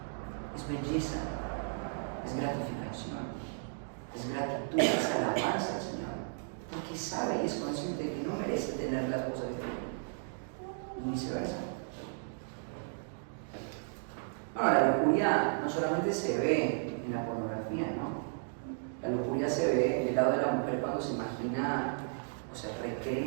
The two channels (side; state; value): left; silent; digital silence